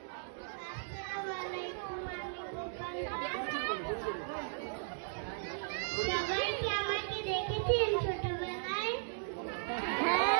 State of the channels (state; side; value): silent; left; digital silence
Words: সবাই কি আমাকে দেখেছেন ছোটবেলায়?